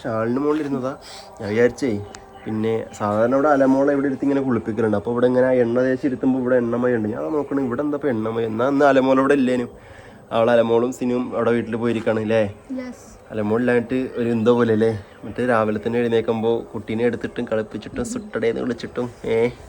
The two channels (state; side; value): identical; both; correlation 1.00